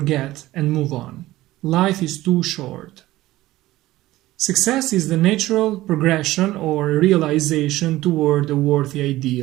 and move on. Life is too short. Success is the natural progression or realization toward a worthy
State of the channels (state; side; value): quieter; left; 16.7 dB